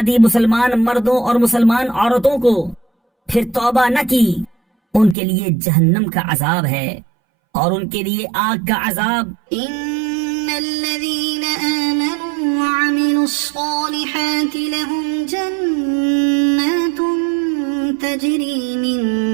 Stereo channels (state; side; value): drops out; left; at 5.2 s